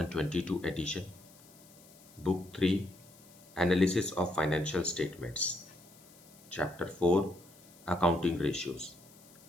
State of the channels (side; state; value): left; noise; hiss, 24 dB below the sound